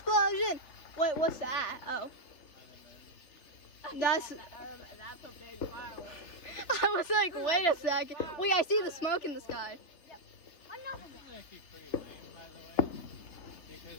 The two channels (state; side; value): late; right; 3.3 ms